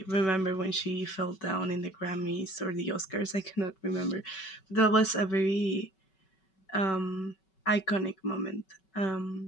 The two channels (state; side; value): late; right; 5.3 ms